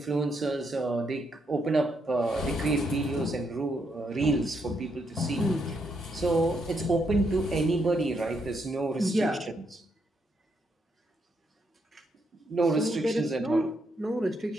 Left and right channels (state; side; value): normal; both; correlation 0.78